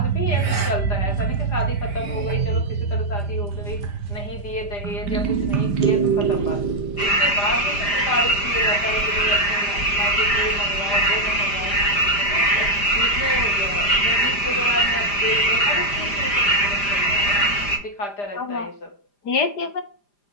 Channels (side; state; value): right; late; 5.0 ms